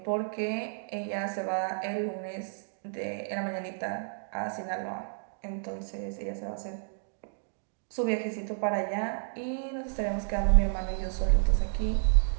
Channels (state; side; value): silent; left; digital silence